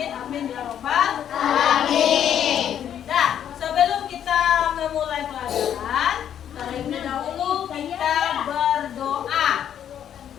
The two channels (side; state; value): right; quieter; 9.6 dB